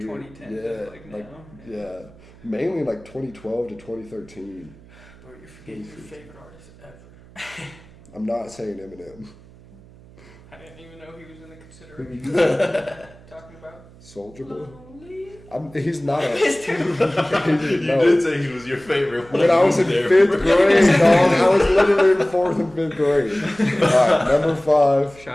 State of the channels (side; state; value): right; noise; hum, 23 dB below the sound